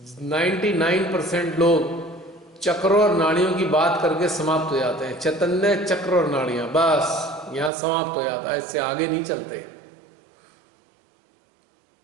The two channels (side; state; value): left; drops out; at 7.7 s